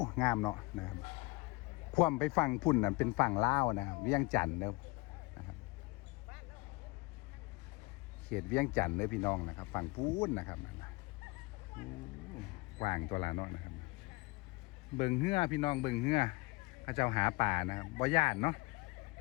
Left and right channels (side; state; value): right; quieter; 24.1 dB